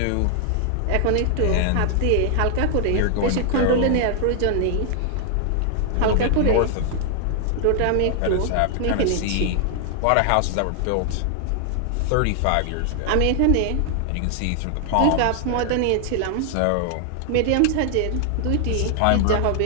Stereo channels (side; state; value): both; different; correlation 0.00